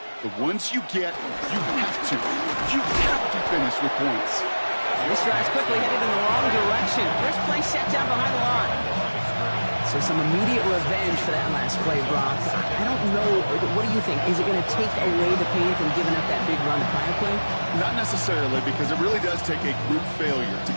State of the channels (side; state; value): both; inverted; correlation -1.00